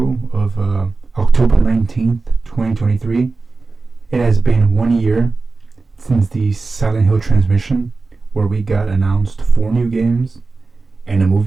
of October 19th, 2023, it has been 1 year since the Silent Hill transmission, where we got announced 4 new games and a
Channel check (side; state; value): left; quieter; 3.8 dB